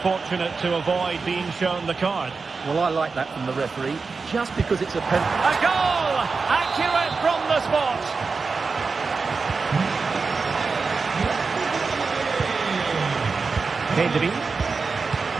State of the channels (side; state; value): left; quieter; 4.6 dB